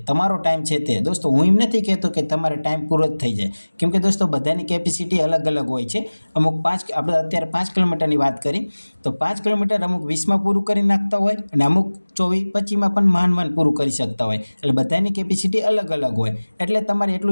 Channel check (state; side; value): inverted; both; correlation -1.00